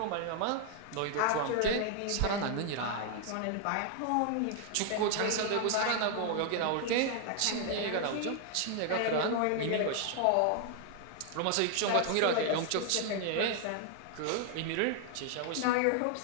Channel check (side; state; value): both; different; correlation 0.00